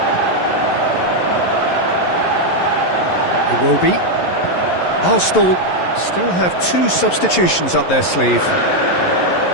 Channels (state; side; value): late; right; 11 ms